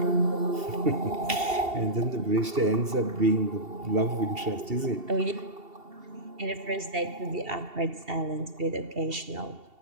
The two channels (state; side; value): late; left; 2.7 ms